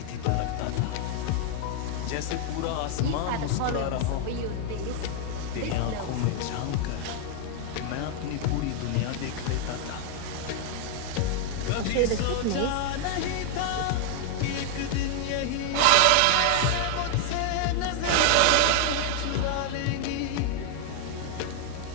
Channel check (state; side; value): different; both; correlation 0.00